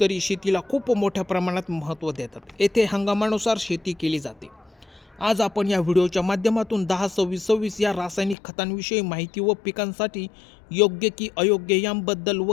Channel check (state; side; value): drops out; right; at 8.3 s